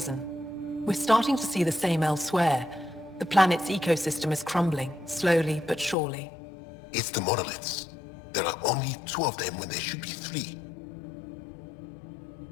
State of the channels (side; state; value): right; drops out; at 6.0 s